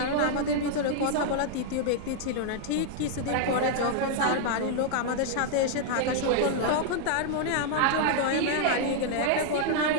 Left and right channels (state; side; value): different; both; correlation -0.01